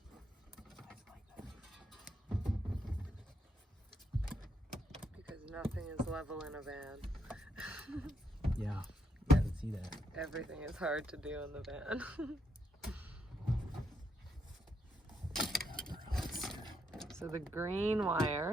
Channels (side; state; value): both; normal; correlation 0.77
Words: Because nothing is level in a van. Yeah, I can see that. Everything is hard to do in the van. So the green